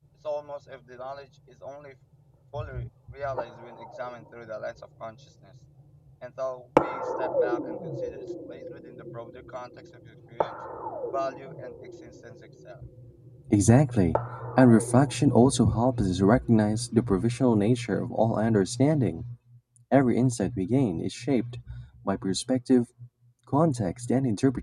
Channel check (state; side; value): identical; both; correlation 1.00